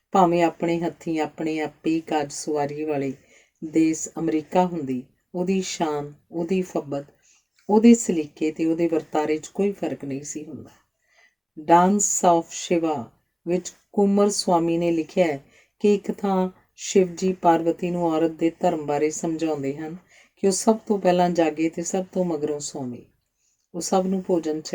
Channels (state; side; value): identical; both; correlation 1.00